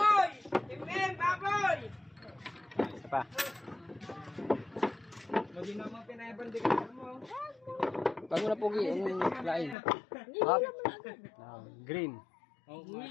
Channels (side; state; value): right; drops out; at 9.8 s